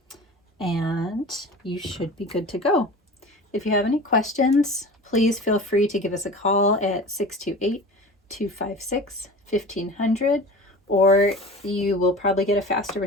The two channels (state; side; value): normal; both; correlation 0.36